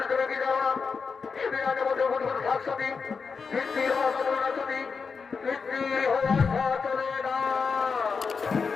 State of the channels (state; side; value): quieter; right; 5.3 dB